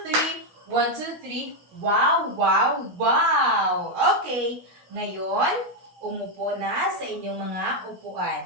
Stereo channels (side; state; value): left; late; 16 ms